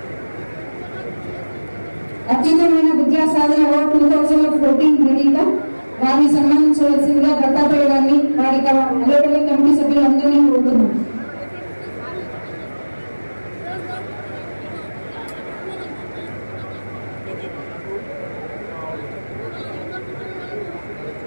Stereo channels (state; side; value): inverted; both; correlation -1.00